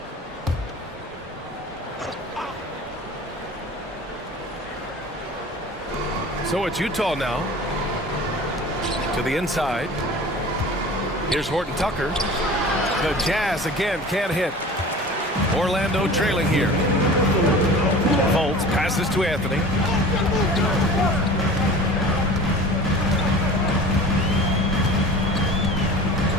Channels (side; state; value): both; normal; correlation 0.40